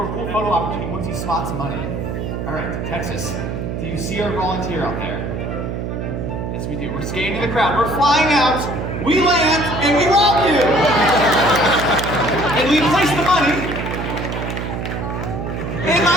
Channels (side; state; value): right; noise; hum, 4 dB below the sound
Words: a cool photo opportunity once he spots money. All right, Texas, do you see our volunteer out there? Yes, we do. We're scanning the crowd. We're flying out, we land, and we rob you! And we place the money in